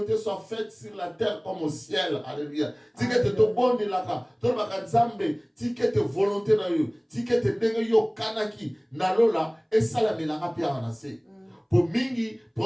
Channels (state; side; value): identical; both; correlation 1.00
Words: soit faite sur la terre comme au ciel. Alléluia. Tikete to bonne laka. To baka Nzambe, tikete volonté na yo. Tikete ndenge yo kanaki na lola et salamelanga pia anase. Pour mingi